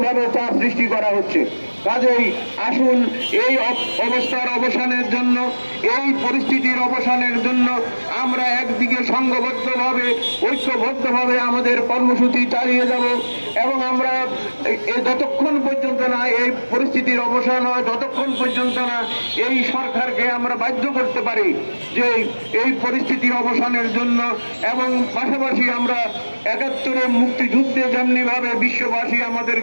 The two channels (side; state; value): both; inverted; correlation -1.00